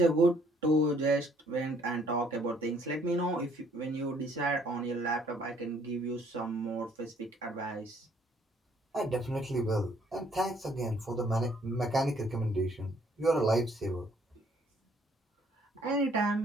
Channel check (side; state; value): both; normal; correlation 0.63